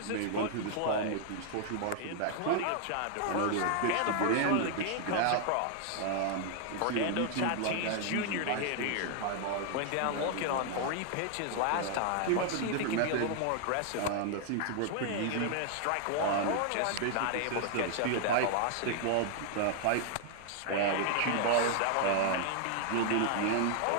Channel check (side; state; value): both; different; correlation 0.00